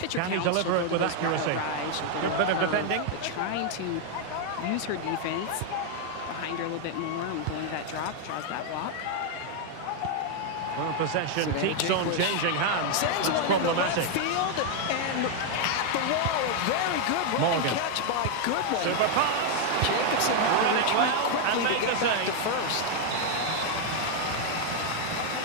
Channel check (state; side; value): different; both; correlation 0.00